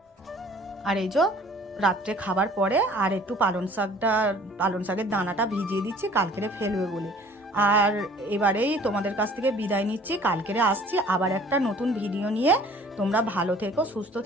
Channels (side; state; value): both; normal; correlation 0.52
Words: আর এই যে রাত্রে খাবার পরে আর একটু পালং শাকের দানাটা ভিজিয়ে দিচ্ছি, কালকেরে ফেলবে বলে। আর এবারেই তোমাদের কাছ থেকে বিদায় নিচ্ছি, কালকেরে আসছি আবার একটা নতুন ভিডিও নিয়ে। তোমরা ভালো থেকো, সুস্থ